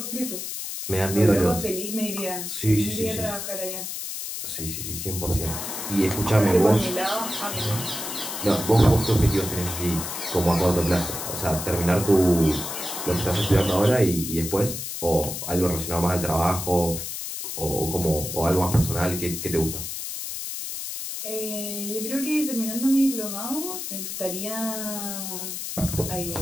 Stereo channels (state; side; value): noise; left; hiss, 6 dB below the sound